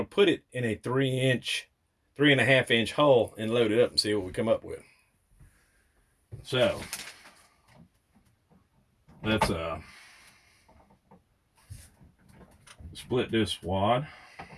put it in a 3.5-inch hole and load it up and see what we come up with. So, let's split this wad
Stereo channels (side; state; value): both; identical; correlation 1.00